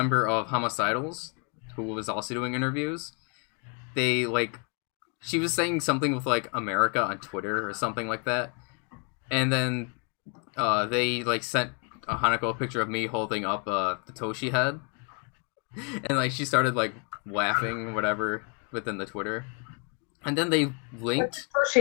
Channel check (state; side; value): quieter; right; 36.3 dB